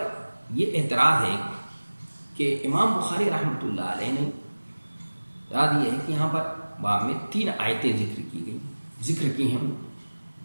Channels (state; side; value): inverted; both; correlation -1.00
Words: یہ اعتراض ہے کہ امام بخاری رحمۃ اللہ علیہ نے اعتراض یہ ہے کہ یہاں پر باب میں 3 آیتیں ذکر کی ہیں،